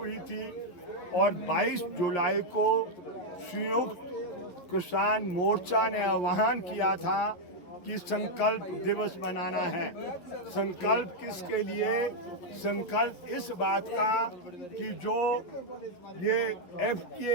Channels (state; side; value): late; right; 11 ms